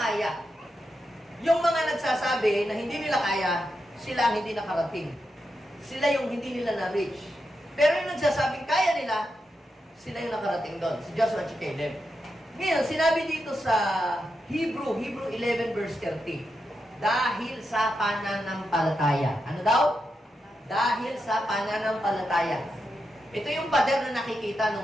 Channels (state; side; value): normal; both; correlation 0.86